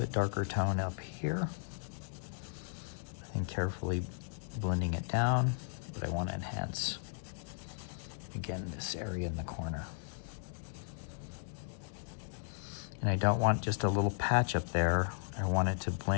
darker tone up here. And carefully blending it down, but I want to enhance, again, this area in the corner. And I don't want just a little patch up there. I want it to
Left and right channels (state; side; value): silent; right; digital silence